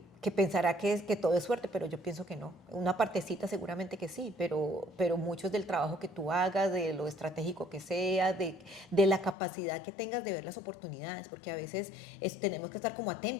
pensará que todo es suerte, pero yo pienso que no. Una partecita seguramente que sí, pero mucho es del trabajo que tú hagas, de lo estratégico que sea, de la capacidad que tengas de ver las oportunidades, porque a veces tenemos que estar como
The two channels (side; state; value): right; drops out; at 9.3 s